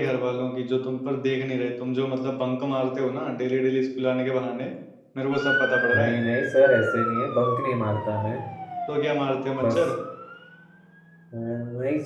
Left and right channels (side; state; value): both; identical; correlation 1.00